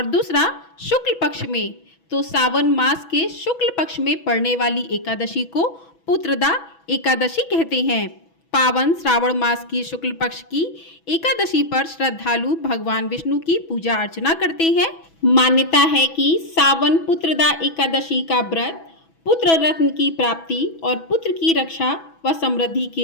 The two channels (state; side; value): late; right; 6.1 ms